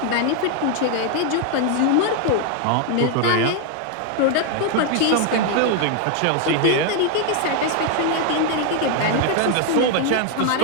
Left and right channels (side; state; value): both; different; correlation 0.01